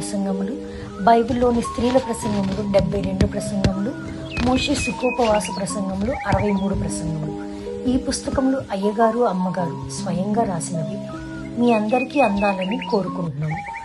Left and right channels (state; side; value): identical; both; correlation 1.00